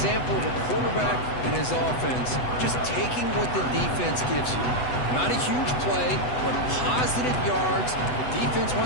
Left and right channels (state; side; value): late; right; 8.0 ms